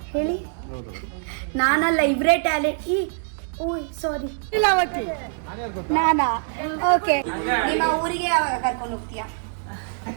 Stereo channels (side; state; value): left; silent; 63 dB below the other